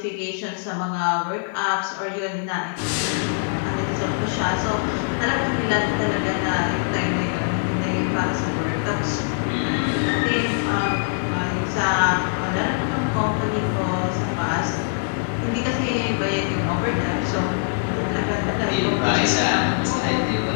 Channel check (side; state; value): right; silent; digital silence